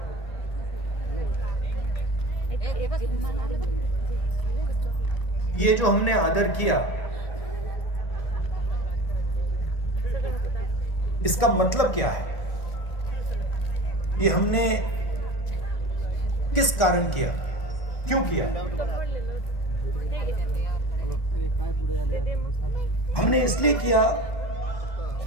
ये जो हमने आदर किया, इसका मतलब क्या है? ये हमने किस कारण किया, क्यों किया? हमने इसलिए किया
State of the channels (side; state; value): right; late; 1.6 ms